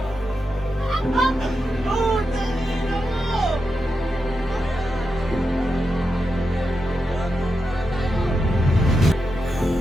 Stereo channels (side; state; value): both; normal; correlation 0.88